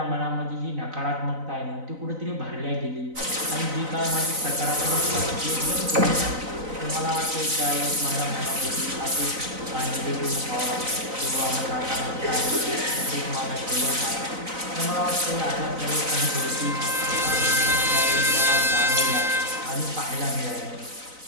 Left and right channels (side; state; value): left; late; 4.0 ms